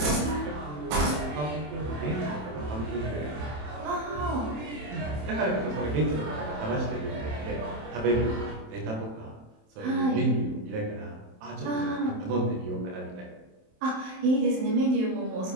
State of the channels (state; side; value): late; left; 27 ms